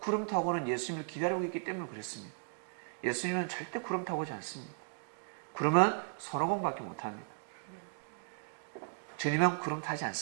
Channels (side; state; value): left; silent; digital silence